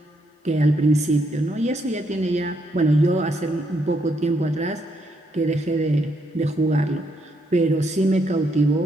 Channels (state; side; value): normal; both; correlation 0.75